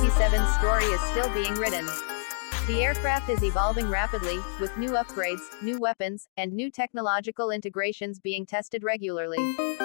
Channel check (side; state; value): right; silent; digital silence